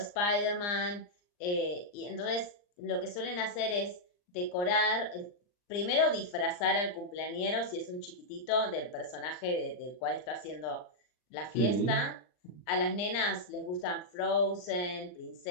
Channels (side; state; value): right; late; 39 ms